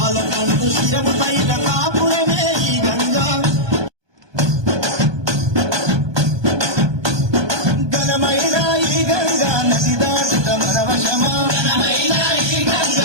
శిరము పైన కాపురమే ఈ గంగా ఘనమైన ఈ గంగా నది దాటుట మన వశమా ఘనమైన ఈ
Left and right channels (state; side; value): late; left; 1.2 ms